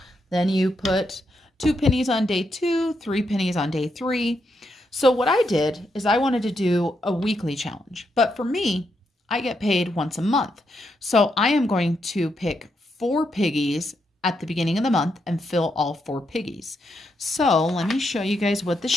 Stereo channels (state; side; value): normal; both; correlation 0.81